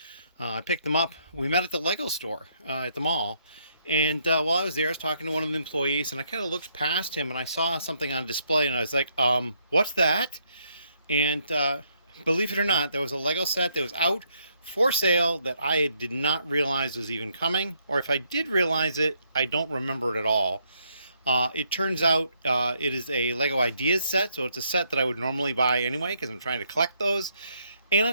I picked them up. We met at the Lego store at the mall. And while I was there, I was talking to one of the employees, and I kind of looked past him, and I saw something on display, and I was like, what's that? And believe it or not, there was a Lego set that was out for sale that I did not realize was even coming. Or if I did realize it, I don't remember it at all. It turns out it is a Lego Ideas set, so it's a set that I would normally buy anyway because I'm trying to collect those. And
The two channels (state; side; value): inverted; both; correlation -0.73